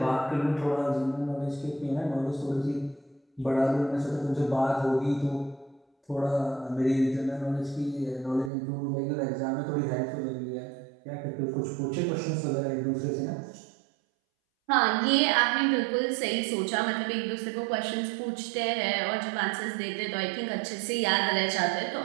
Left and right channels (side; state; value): left; drops out; at 8.5 s